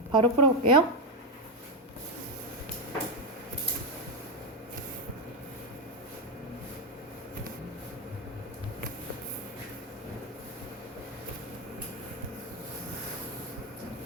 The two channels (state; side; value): normal; both; correlation 0.08